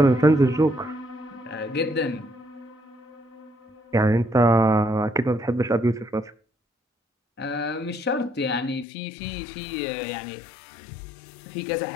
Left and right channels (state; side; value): drops out; right; at 8.8 s